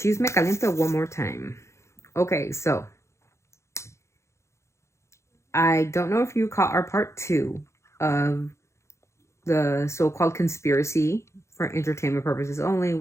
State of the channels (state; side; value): late; right; 0.14 ms